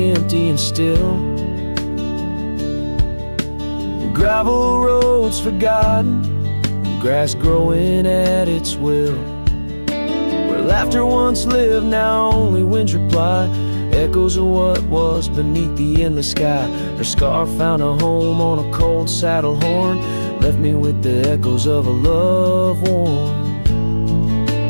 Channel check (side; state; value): both; inverted; correlation -1.00